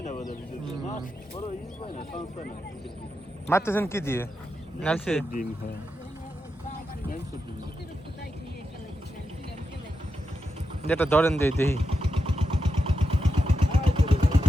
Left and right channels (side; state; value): both; normal; correlation 0.87